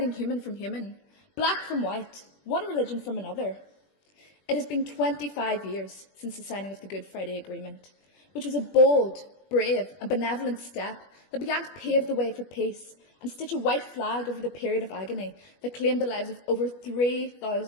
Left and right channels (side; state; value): right; late; 21 ms